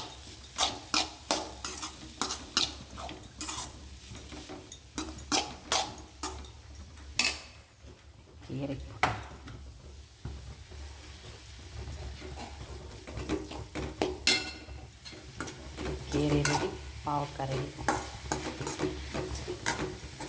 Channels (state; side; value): identical; both; correlation 1.00